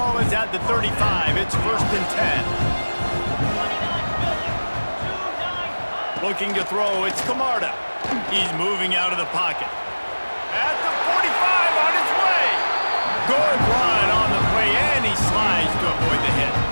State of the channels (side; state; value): both; inverted; correlation -1.00